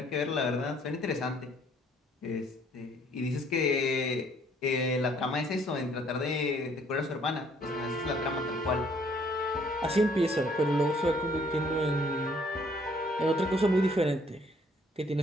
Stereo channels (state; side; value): normal; both; correlation 0.63